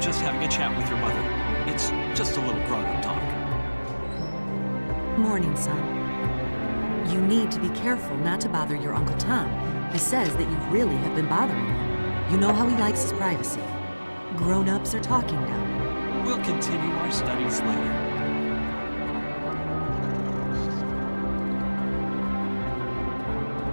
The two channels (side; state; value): both; inverted; correlation -1.00